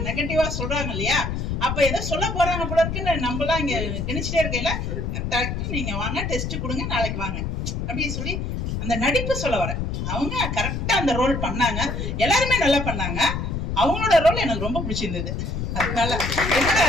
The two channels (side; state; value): left; noise; rumble, 3 dB below the sound